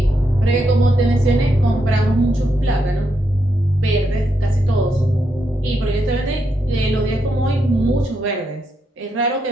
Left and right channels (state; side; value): normal; both; correlation 0.81